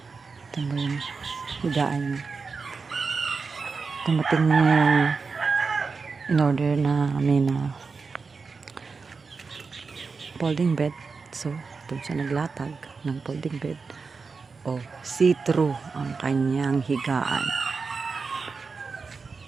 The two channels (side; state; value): left; quieter; 4.7 dB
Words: Ito mo yung higaan niya. Tumating na yung in-order namin na folding bed. So, doon siya naglatag ng folding bed. O, see-through ang kanyang higaan.